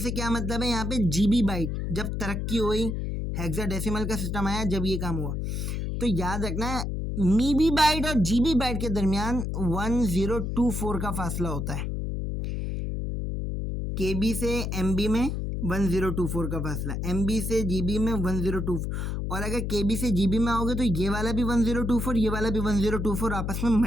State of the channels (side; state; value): left; noise; hum, 2 dB below the sound